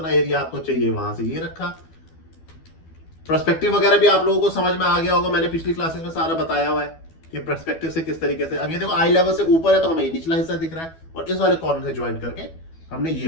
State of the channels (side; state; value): right; late; 12 ms